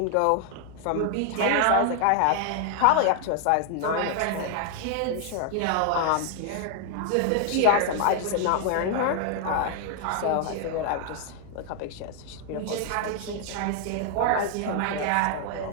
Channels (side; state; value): both; different; correlation 0.00